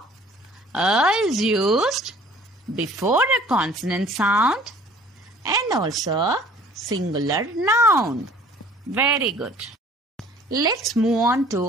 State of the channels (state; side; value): normal; both; correlation 0.52